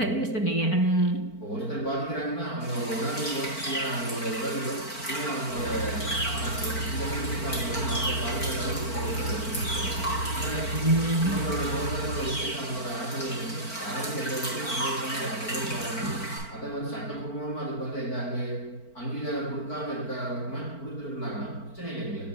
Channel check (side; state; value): right; late; 4.4 ms